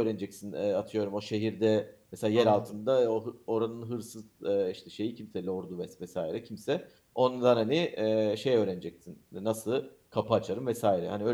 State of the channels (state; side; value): identical; both; correlation 1.00